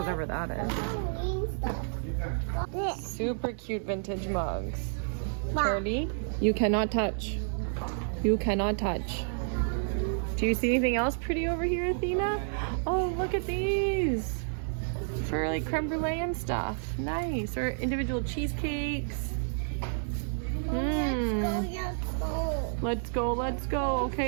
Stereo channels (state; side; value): silent; left; digital silence